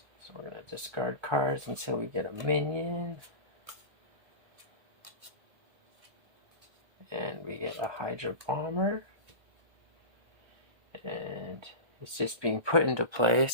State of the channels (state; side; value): late; left; 1.2 ms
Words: So we're going to discard cards until we get a minion. And we get a Hydra Bomber. And it's just being put into play,